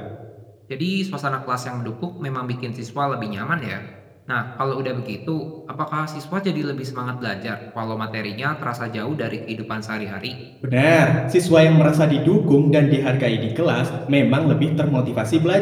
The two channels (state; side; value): identical; both; correlation 1.00